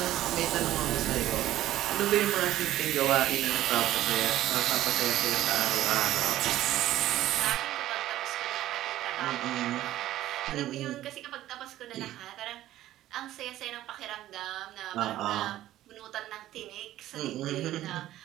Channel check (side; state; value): left; quieter; 14.0 dB